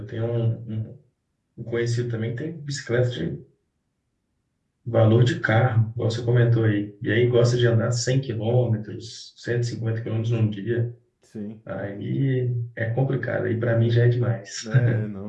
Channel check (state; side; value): identical; both; correlation 1.00